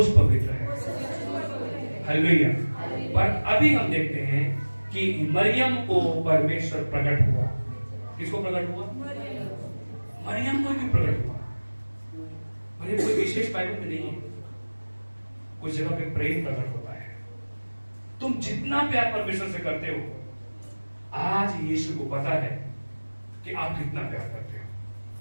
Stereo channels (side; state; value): both; inverted; correlation -1.00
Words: पवित्र है। हालेलुया। पर अभी हम देखते हैं कि मरियम को परमेश्वर प्रकट हुआ। किसको प्रकट हुआ? मरियम को भी प्रकट हुआ। मरियम कोई विशेष बाइबल में नहीं है, कुछ जगह पे प्रेम प्रकट होता है। तुम जितना प्यार परमेश्वर से करते हो, आज यीशु को पता है कि आप कितना प्यार करते हो।